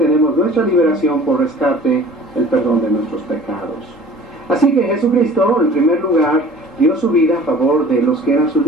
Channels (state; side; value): normal; both; correlation 0.46